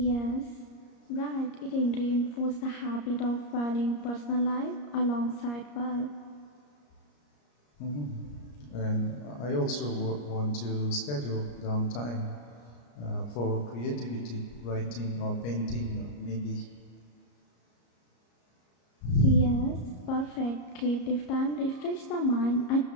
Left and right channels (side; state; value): right; late; 34 ms